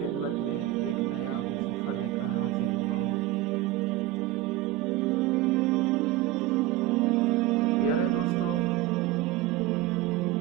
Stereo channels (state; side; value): quieter; left; 14.6 dB